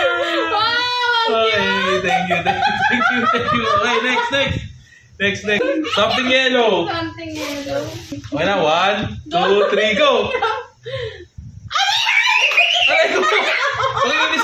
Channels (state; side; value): identical; both; correlation 1.00